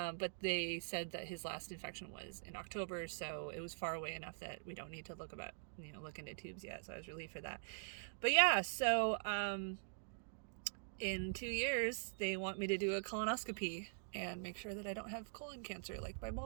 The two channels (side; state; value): left; silent; digital silence